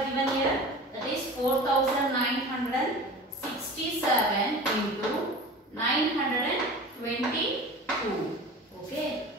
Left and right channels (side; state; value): both; normal; correlation 0.37